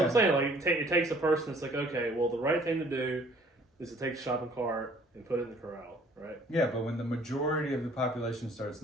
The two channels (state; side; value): normal; both; correlation 0.57